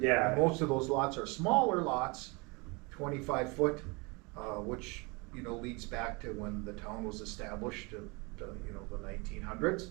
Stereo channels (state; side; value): quieter; left; 28.2 dB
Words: And most of those lots are smaller lots, 25 foot, which, leads back to when the town was established, to the 1900s.